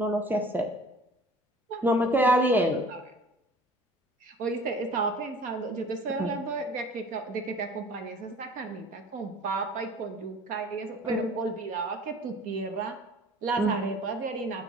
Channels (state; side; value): normal; both; correlation 0.47